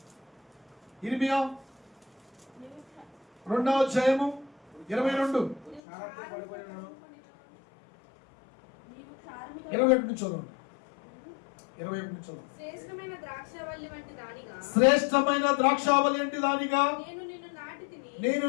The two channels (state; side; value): drops out; right; at 5.8 s